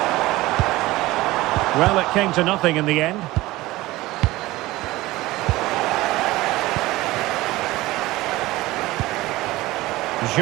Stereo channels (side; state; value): left; quieter; 18.6 dB